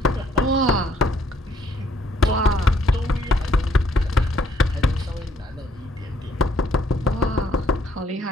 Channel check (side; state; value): both; normal; correlation 0.67